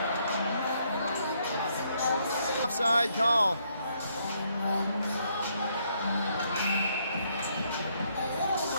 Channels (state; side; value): inverted; both; correlation -0.72